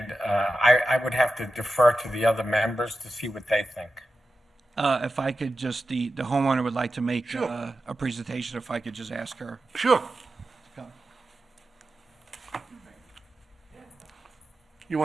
would have to defer to the other members to see what they think. If I could just, the homeowner would like to make Sure. a presentation, if I could just ask her. Sure. You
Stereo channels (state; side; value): normal; both; correlation 0.91